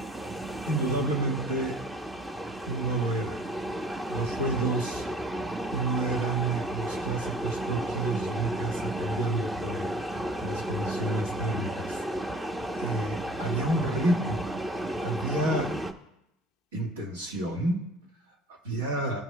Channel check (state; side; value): normal; both; correlation 0.49